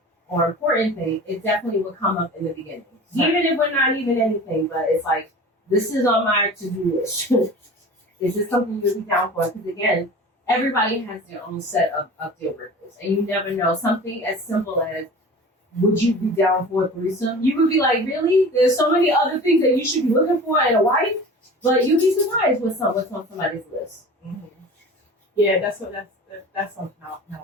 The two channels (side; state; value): both; normal; correlation 0.39